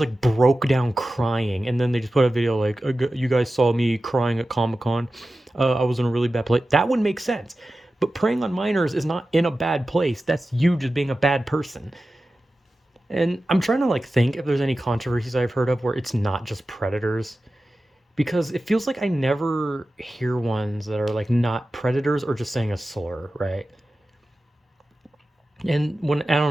broke down crying and then they just put a video like you guys saw me crying at Comic-Con. I was in a really bad place. That would make sense. But preying on minors is not in a bad place. That's you just being a bad person. And I'm trying to like think if there's any controversies I've heard of where it's not just predators because it feels like I never hear ones that are like not predators or just saying a slur, right? And when I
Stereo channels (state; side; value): normal; both; correlation 0.94